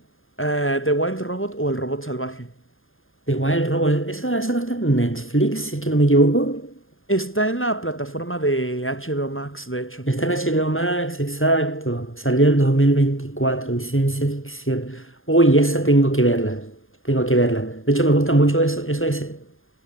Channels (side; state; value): right; late; 0.59 ms